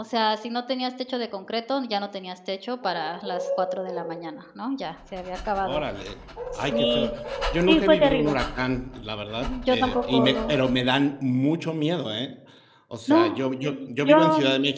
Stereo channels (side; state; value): both; identical; correlation 1.00